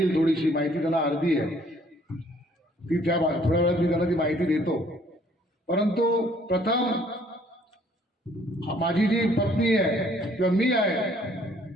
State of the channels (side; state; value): both; normal; correlation 0.61